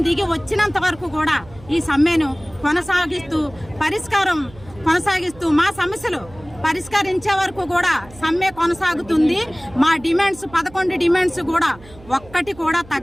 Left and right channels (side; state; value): right; noise; hum, 22 dB below the sound